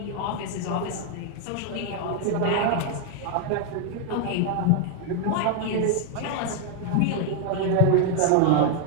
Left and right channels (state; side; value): different; both; correlation 0.00